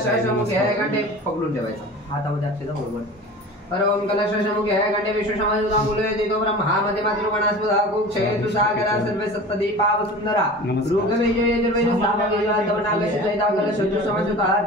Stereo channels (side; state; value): both; normal; correlation 0.37